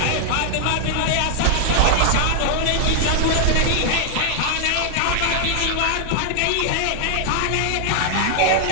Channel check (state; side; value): different; both; correlation 0.00